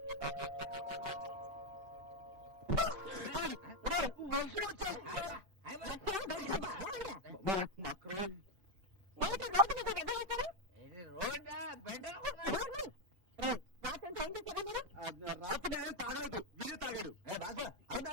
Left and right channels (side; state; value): left; late; 5.2 ms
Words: వర్షం వచ్చేస్తా. ఏమిటో రోడ్డు మీద వెధవేషాలు? రాత్రి అంతా ఏం చేశారా మీరు? రాత్రి నేనేం తాగలేదు, వీడే తాగాడు.